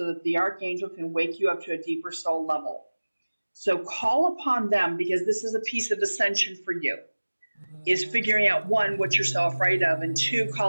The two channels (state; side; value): inverted; both; correlation -1.00